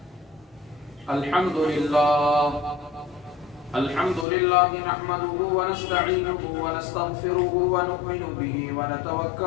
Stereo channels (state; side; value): drops out; right; at 4.2 s